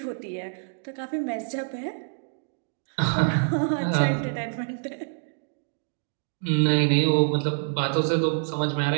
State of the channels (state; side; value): silent; left; digital silence